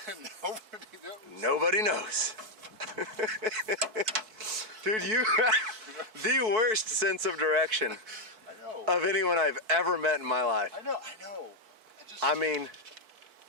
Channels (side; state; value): left; late; 4.5 ms